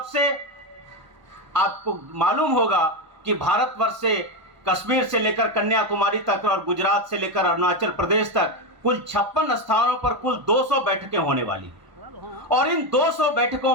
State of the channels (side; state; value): left; late; 1.0 ms